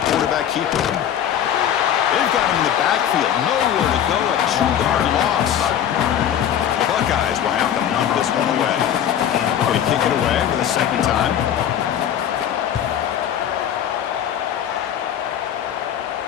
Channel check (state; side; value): quieter; right; 9.9 dB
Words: quarterback keeper. They've got him in the backfield. Nowhere to go. A 2-yard loss. The Buckeyes will have to knock this one away. Going to kick it away for the second time.